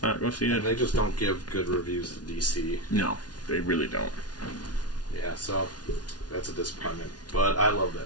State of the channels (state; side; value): late; right; 0.69 ms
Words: not go see it. And they just don't give good reviews to DC. No, they really don't. Yeah, so that's a disappointment. But I love that